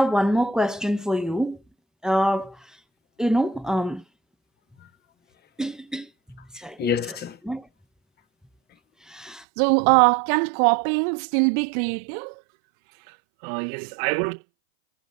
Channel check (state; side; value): drops out; left; at 9.5 s